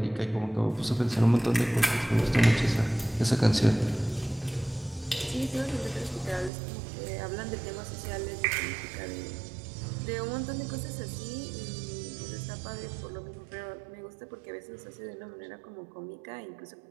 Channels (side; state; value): left; drops out; at 6.5 s